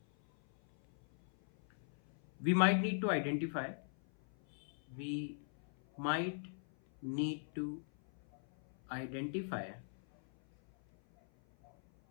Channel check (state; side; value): silent; right; 51 dB below the other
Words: we might need to identify